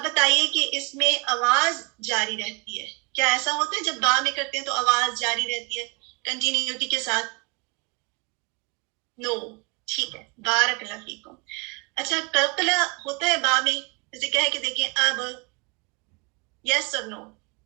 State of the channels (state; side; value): quieter; left; 30.1 dB